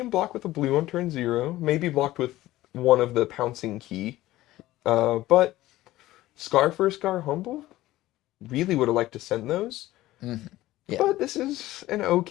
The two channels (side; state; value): right; quieter; 16.3 dB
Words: block with a blue on turn 0. Maybe blocked with one of the pouncing key. But Scar for Scar Humble, really would have liked to send those. Mm-hmm. Yeah. But this is an